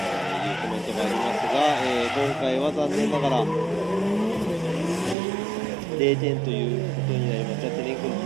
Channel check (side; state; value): left; drops out; at 5.2 s